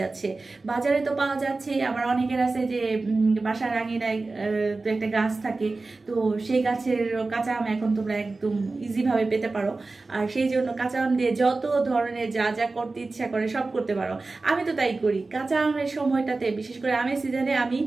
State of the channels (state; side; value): quieter; left; 3.6 dB